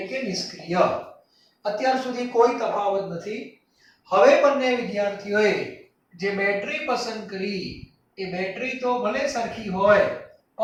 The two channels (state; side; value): identical; both; correlation 1.00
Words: કે નિષ્ક્રિય. અત્યાર સુધી કોઈ તફાવત નથી. હવે બંને વિદ્યાર્થીઓએ જે બેટરી પસંદ કરી એ બેટરી તો ભલે સરખી હોય